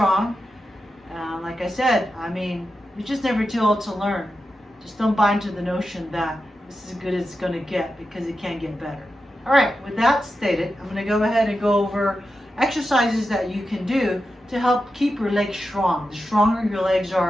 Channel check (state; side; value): normal; both; correlation 0.90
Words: Like I said, I mean, you're just never too old to learn. Just don't buy into the notion that this is as good as it's going to get, because it can get better. All right, with that stated, I'm going to go ahead and go over exercises that you can do to help keep your legs strong. The stronger your legs